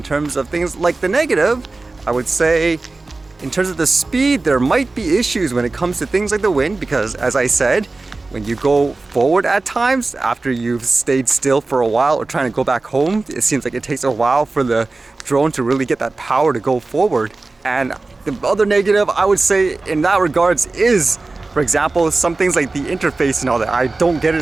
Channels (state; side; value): quieter; left; 3.4 dB